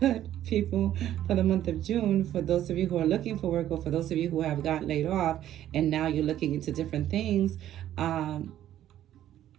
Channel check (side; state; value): left; quieter; 12.1 dB